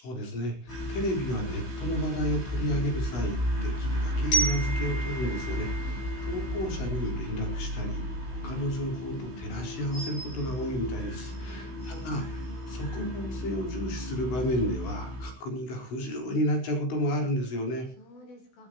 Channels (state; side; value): late; right; 16 ms